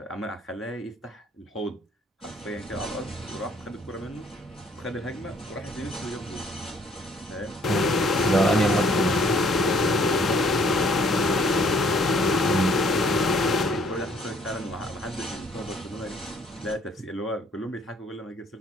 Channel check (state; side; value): normal; both; correlation 0.61